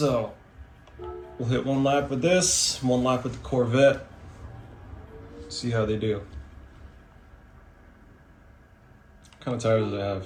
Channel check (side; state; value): both; identical; correlation 1.00